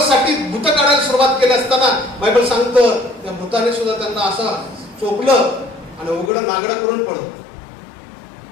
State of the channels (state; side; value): drops out; right; at 6.3 s